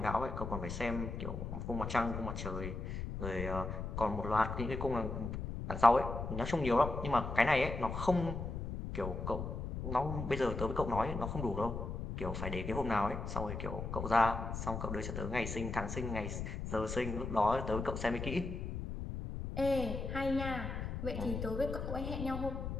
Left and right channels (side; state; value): left; noise; rumble, 5 dB below the sound